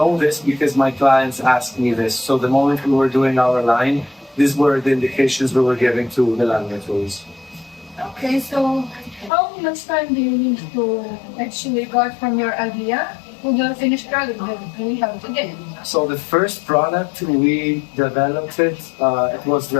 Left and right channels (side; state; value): right; drops out; at 9.3 s